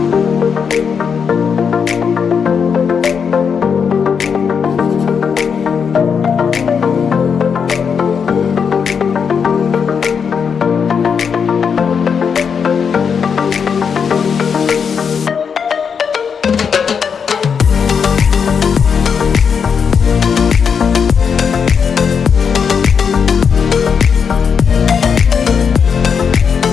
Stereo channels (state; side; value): quieter; right; 6.6 dB